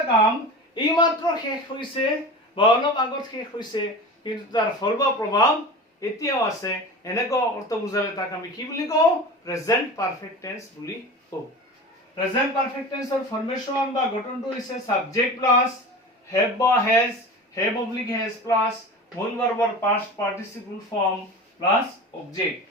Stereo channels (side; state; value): both; normal; correlation 0.32